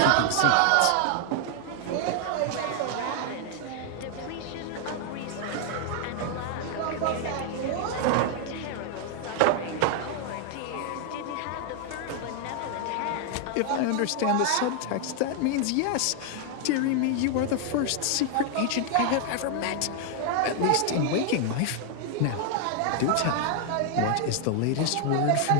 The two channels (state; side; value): different; both; correlation 0.00